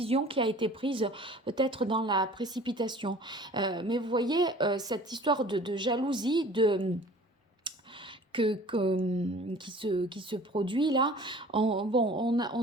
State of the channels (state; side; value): normal; both; correlation 0.47